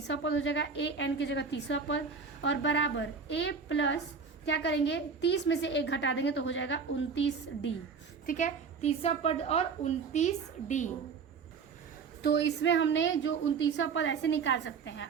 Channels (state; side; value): quieter; left; 5.4 dB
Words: पद हो जाएगा, ए एन की जगह तीसरा पद, और बराबर ए प्लस क्या करेंगे, 30 में से 1 घटा देंगे तो हो जाएगा 29 डी। ठीक है, तीसरा पद और 29 डी। तो इसमें हमने जो 29वां पद ऐसे निकाल सकते हैं।